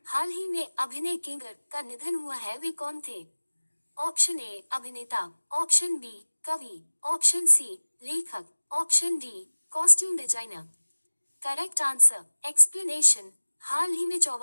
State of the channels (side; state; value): both; inverted; correlation -1.00